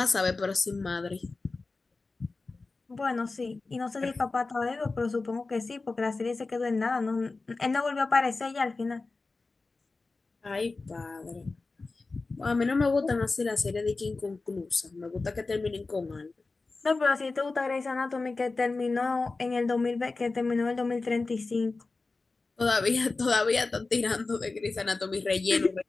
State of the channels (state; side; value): quieter; right; 3.7 dB